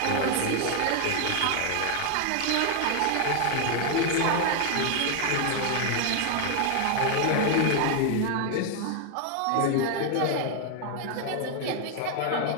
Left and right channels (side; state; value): both; different; correlation 0.00